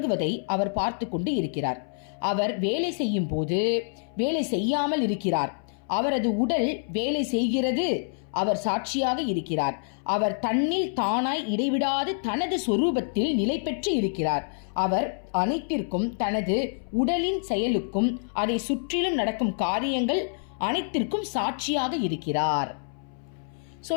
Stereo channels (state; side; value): silent; right; 60 dB below the other